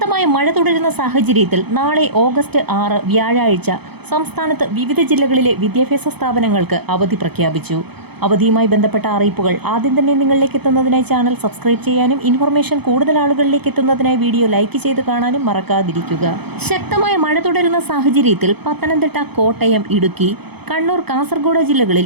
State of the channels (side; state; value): left; late; 0.98 ms